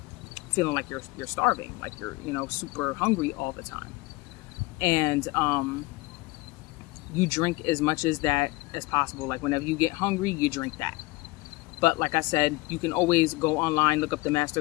feeling like you're starving, like you're super hungry all the time. And you drink as much as that as possible. Like whenever you get hungry, you drink that. But like I said, you can always go online, look up the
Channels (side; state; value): right; quieter; 22.3 dB